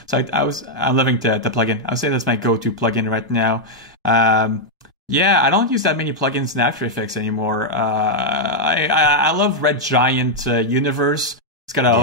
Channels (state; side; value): normal; both; correlation -0.02